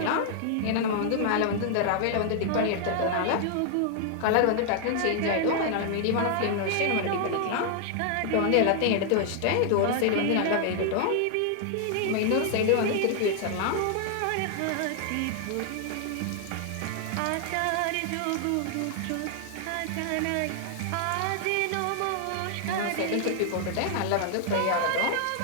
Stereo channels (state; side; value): different; both; correlation 0.00